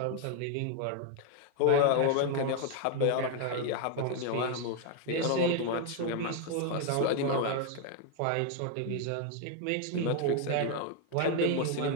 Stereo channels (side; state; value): both; different; correlation 0.00